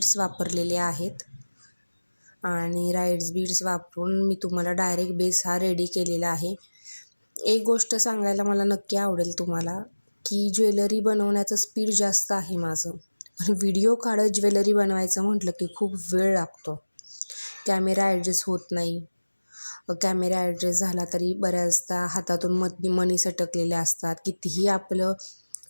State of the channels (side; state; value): both; inverted; correlation -1.00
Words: वापरलेले आहेत आणि राईस बीड्स वापरून मी तुम्हाला डायरेक्ट बेस हा रेडी केलेला आहे. एक गोष्ट सांगायला मला नक्की आवडेल तुम्हाला की ज्वेलरी बनवण्याचं स्पीड जास्त आहे माझं, पण व्हिडिओ काढत ज्वेलरी बनवायचं म्हटलं की खूप वेळ लागतो. कॅमेरा ॲडजस्ट होत नाही. कॅमेरा ॲडजस्ट झाला तरी बऱ्याचदा हातातून मनी सटकलेले असतात. कितीही आपलं